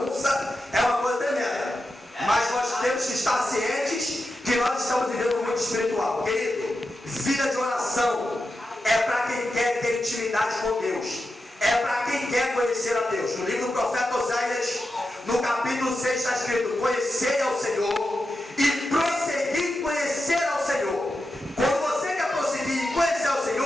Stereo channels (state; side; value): normal; both; correlation 0.90